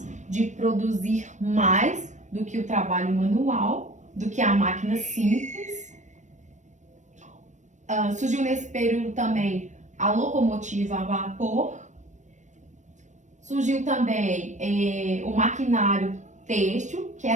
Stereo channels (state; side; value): late; left; 0.35 ms